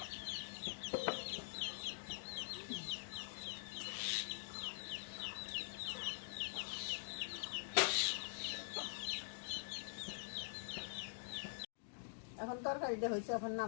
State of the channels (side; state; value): right; silent; digital silence